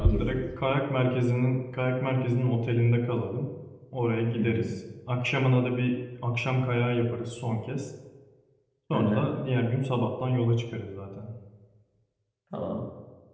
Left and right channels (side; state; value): both; identical; correlation 1.00